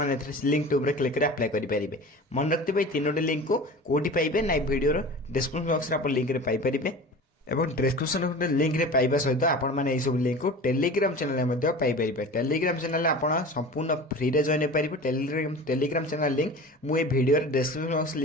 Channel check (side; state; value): both; normal; correlation 0.36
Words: लिंक टू क्लिक कर अप्लाई करेंगे। मन रखते तीनोटी लिंक को कौटी पाइबे ना वीडियो डिस्क्रिप्शन बॉक्स आप लिंक पाइपर एवं डिस्क्रिप्शन लिंक रे पाइबा सहित आपण माने सब लिंक को टेलीग्राम चैनल में पाइपर। टेलीग्राम चैनल आप संपूर्ण फ्री रे जॉइन पाइबे। टेलीग्राम चैनल लिंक मुझे वीडियो डिस्क्रिप्शन बॉक्स